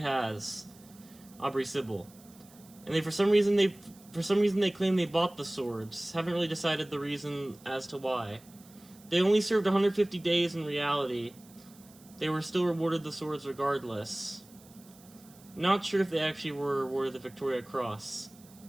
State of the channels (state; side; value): noise; right; hiss, 25 dB below the sound